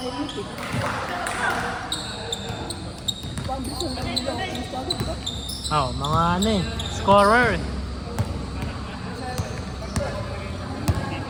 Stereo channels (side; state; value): both; identical; correlation 1.00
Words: Oo, mga ano eh. Scorer.